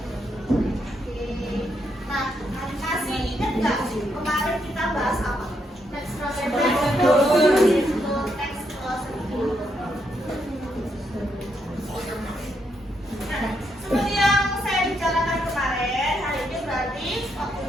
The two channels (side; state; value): both; normal; correlation 0.78